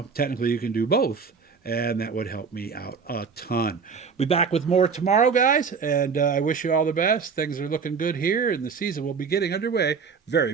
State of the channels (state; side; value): quieter; left; 5.7 dB